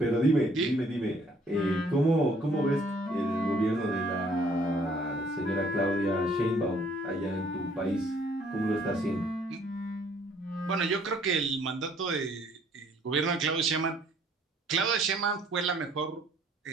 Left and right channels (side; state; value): both; normal; correlation 0.61